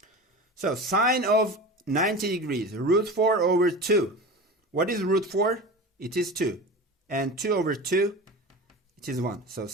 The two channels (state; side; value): normal; both; correlation 0.31